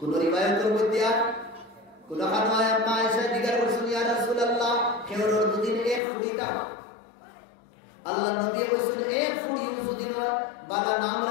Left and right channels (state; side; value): drops out; right; at 6.0 s